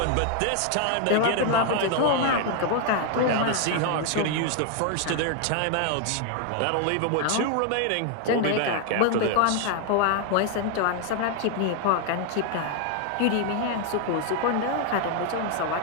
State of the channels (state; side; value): different; both; correlation 0.00